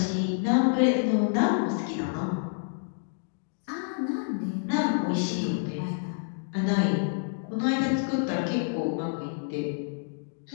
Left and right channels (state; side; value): silent; right; digital silence